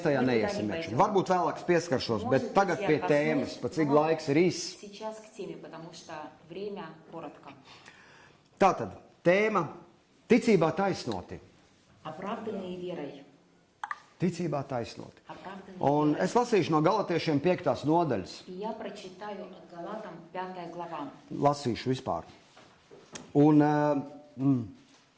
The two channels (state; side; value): identical; both; correlation 1.00